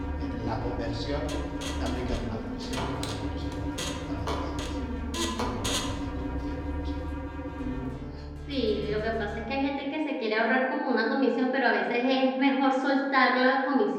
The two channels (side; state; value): both; identical; correlation 1.00